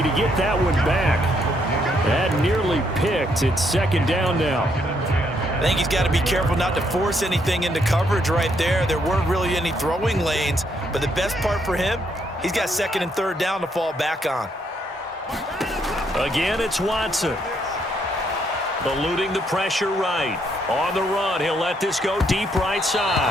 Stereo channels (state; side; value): normal; both; correlation 0.73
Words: to get that one back. That nearly picked. It's 2nd down now. I think he's got to be careful not to force anything into coverage right there. There weren't really any throwing lanes, but the best part for him, he's got 2nd and 3rd down to fall back on. Again, it's Watson. Eluding the pressure right. On the run, he'll let this go deep right